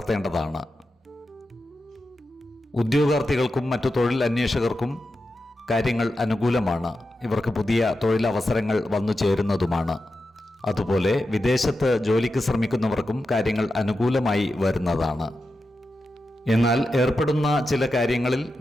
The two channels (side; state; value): both; normal; correlation 0.90